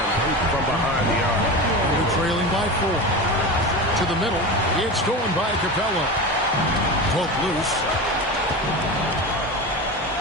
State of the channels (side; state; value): both; normal; correlation 0.26